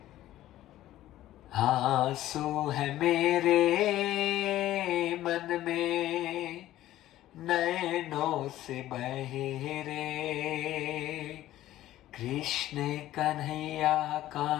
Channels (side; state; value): right; quieter; 14.2 dB